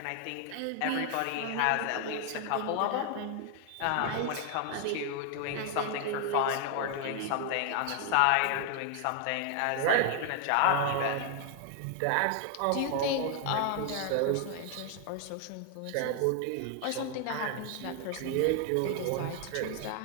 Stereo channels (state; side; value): different; both; correlation 0.00